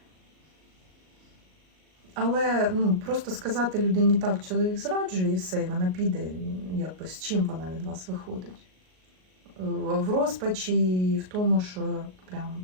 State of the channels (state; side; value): late; left; 38 ms